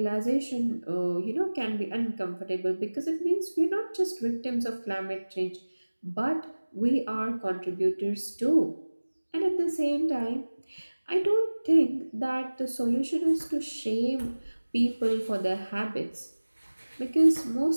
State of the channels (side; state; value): both; inverted; correlation -1.00